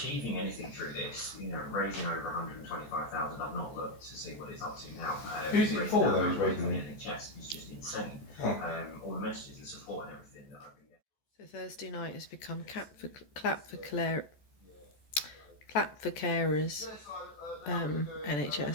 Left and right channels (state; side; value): late; right; 14 ms